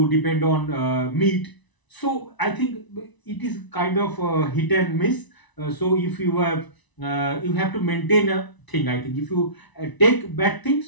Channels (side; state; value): right; late; 1.0 ms